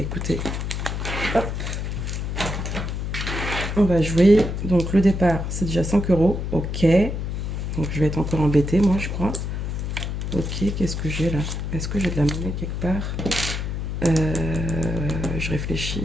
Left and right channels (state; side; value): noise; left; hum, 3 dB below the sound